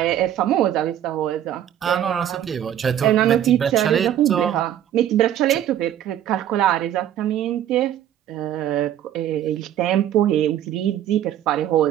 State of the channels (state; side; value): quieter; left; 11.0 dB